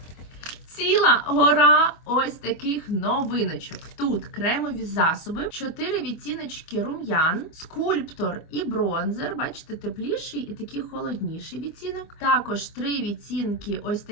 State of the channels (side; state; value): right; late; 25 ms